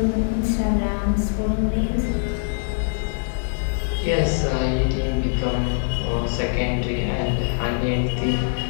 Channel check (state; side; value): silent; right; digital silence